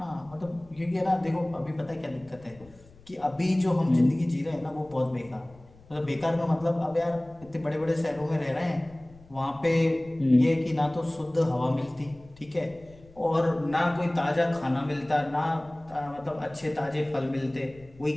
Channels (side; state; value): left; noise; rumble, 24 dB below the sound